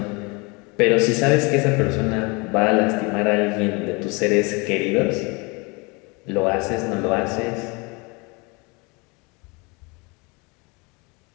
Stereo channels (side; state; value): right; quieter; 28.5 dB